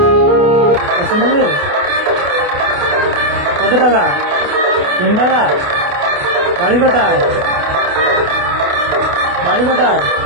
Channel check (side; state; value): left; late; 28 ms